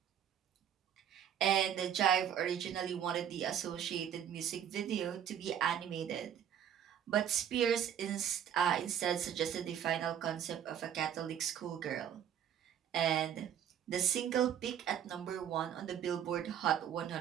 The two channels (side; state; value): left; quieter; 9.4 dB